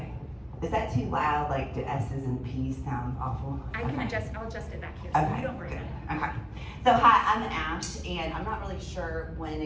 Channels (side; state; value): both; identical; correlation 1.00